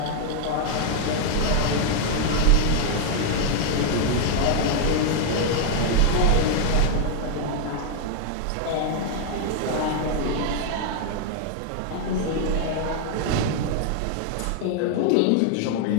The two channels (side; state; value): both; different; correlation 0.00